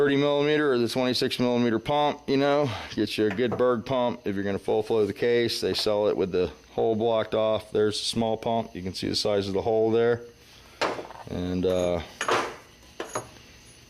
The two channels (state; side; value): identical; both; correlation 1.00